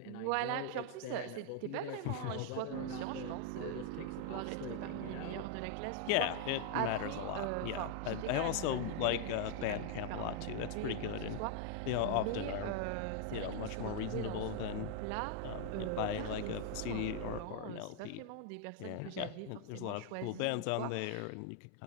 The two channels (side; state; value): both; different; correlation 0.00